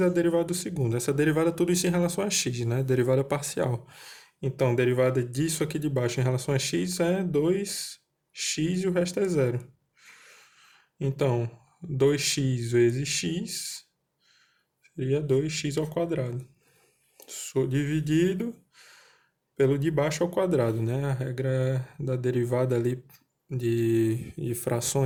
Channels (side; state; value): both; identical; correlation 1.00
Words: a derivada do segundo. Essa derivada, tudo isso em relação a x, né? Derivada parcial. Então, derivada disso aqui de baixo em relação a x é 2x e o resto é zero. Então, 2x vezes x seria 2x ao quadrado. Dividido pelo de baixo ao quadrado, né? A regra da derivada ali de